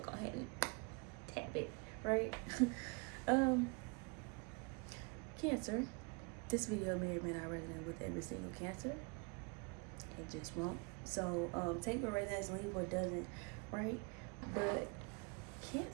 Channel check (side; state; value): left; quieter; 32.1 dB